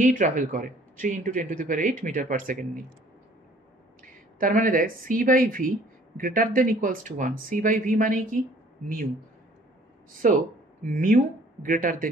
ট্রাভেল করে, 3 × 10⁸ মিটার পার সেকেন্ড নিয়ে। তার মানে দেখ C by V greater than equals to 1, C by V মানে কি? Mu. So mu greater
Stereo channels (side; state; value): both; normal; correlation 0.56